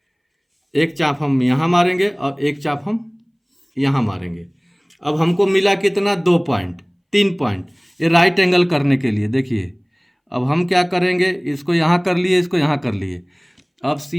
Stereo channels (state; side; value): identical; both; correlation 1.00